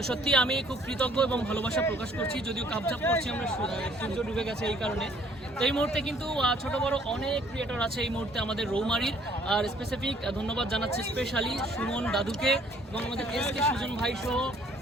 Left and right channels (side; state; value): both; normal; correlation 0.60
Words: সত্যি আমি খুব কৃতজ্ঞ এবং ভালোবাসা প্রকাশ করছি, যদিও কাপচাপ করছি আমরা, সূর্য ডুবে গেছে এই কারণে। তো এই মুহূর্তে কিন্তু ছোট বড় অনেক ক্রিয়েটর আছে এই মুহূর্তে আমাদের রৌমারীর। আর স্পেসিফিক ধন্যবাদ জানাচ্ছি স্পেশালি সুমন দাদুকে এবং আমাদের এসকে সুজন ভাই সহ